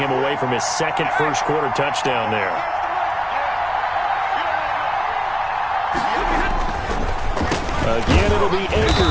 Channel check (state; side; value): identical; both; correlation 1.00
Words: away from his 2nd first-quarter touchdown there. Again, it'll be